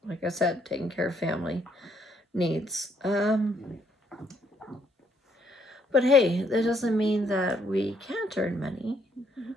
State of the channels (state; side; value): normal; both; correlation 0.70